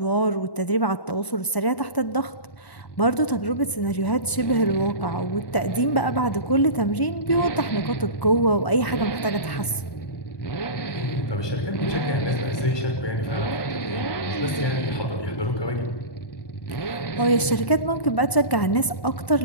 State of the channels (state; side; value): late; right; 1.0 ms